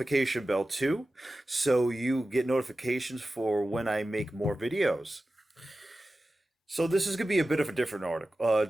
bell too, so you get notifications for when I make more videos. So this is gonna be a bit of a different article,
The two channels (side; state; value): both; normal; correlation 0.94